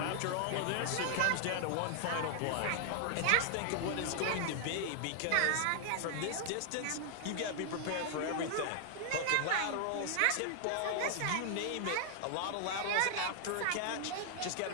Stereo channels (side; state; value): both; different; correlation 0.00